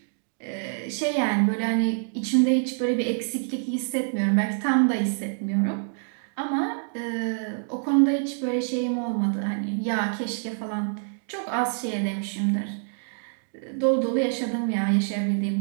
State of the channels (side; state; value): left; silent; digital silence